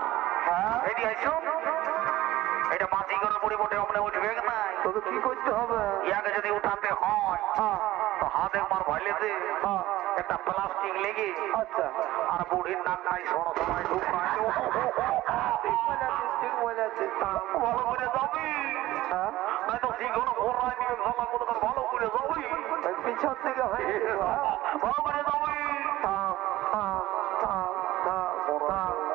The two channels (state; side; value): quieter; left; 16.4 dB